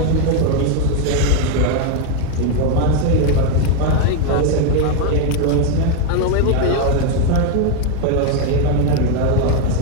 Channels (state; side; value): different; both; correlation 0.01